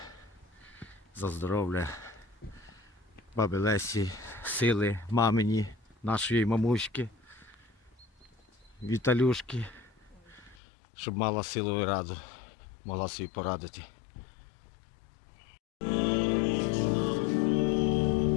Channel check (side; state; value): right; drops out; at 10.6 s